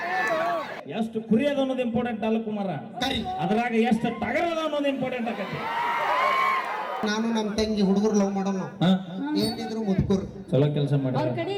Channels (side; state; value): both; identical; correlation 1.00